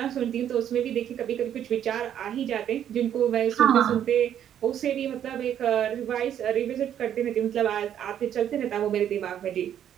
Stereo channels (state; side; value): quieter; left; 10.0 dB